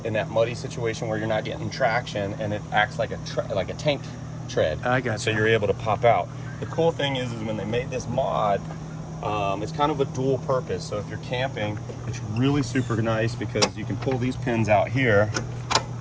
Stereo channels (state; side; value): identical; both; correlation 1.00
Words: In that muddy situation where you're not getting traction, and it acts like a tank tread. I got you. So you're able to pop out. The cool thing is when they made this mod, it's kind of a dual purpose. So if you're camping, it's really super nice because you can pull these pins out here.